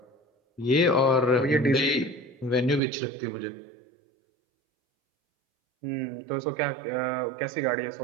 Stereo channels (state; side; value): drops out; left; at 2.8 s